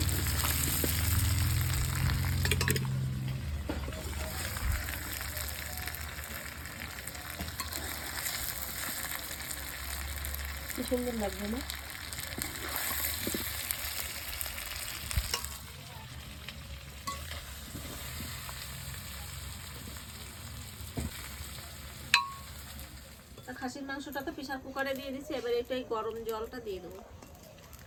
কি সুন্দর লাগবে না? খাসির মাংসটা তো প্রেসার কুকারে দিয়ে দিচ্ছি, এবার এটাই গরম জলটা দিয়ে দেবো।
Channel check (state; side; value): identical; both; correlation 1.00